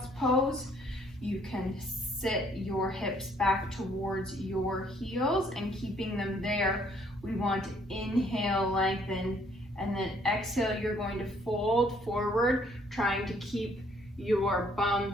pose. You can sit your hips back towards your heels and keeping them there. We want to inhale, lengthen, and then exhale, you're going to fold forward, trying to keep your bum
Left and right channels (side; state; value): both; normal; correlation 0.64